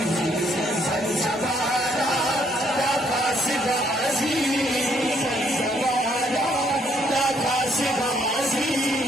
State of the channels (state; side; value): normal; both; correlation 0.69